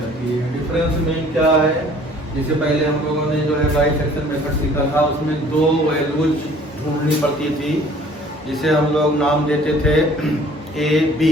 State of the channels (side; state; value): both; normal; correlation 0.53